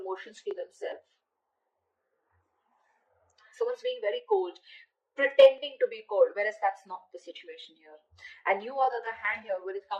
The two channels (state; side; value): identical; both; correlation 1.00